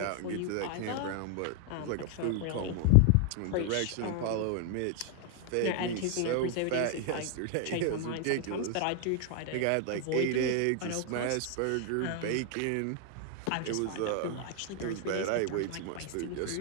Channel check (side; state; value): both; different; correlation 0.00